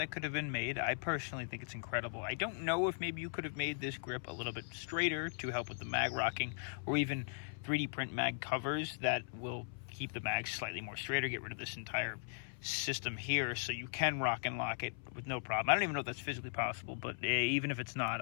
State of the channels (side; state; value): right; silent; 52 dB below the other